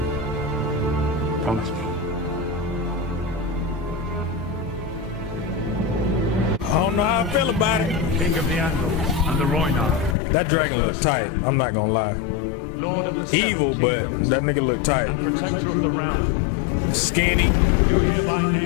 Promise me. I don't know how I feel about it. King of the Andal and the Rhoynar. That dragon looks tight. I'm not gonna lie. Lord of the Evil, Seven but Kingdoms that nigga look tight. and protector of the realm. Skinny. You hereby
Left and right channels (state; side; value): drops out; right; at 10.2 s